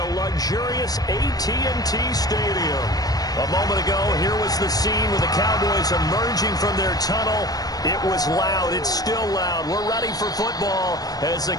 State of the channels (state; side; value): late; right; 0.18 ms